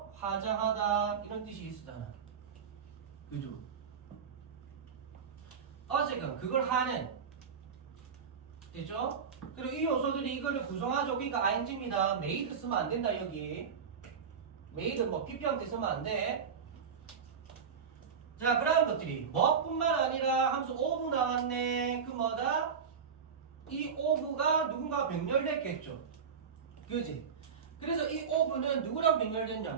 화장하다 이런 뜻이 있으잖아. 그죠? 어쨌든 그걸 하는 됐죠? 그리고 이 요소들이 이거를 구성하죠. 그러니까 ing입니다. made 쓰면 안 된다 여기. made 뭐 pp형태 쓰면 안 돼. 자, 그러한 것들이 뭐뿐만 아니라 함수 of 나왔네. 그 뭐다? 이 of가 누군가 병렬됐겠죠. 그지? 그래서 이 of는 누구랑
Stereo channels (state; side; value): quieter; left; 6.6 dB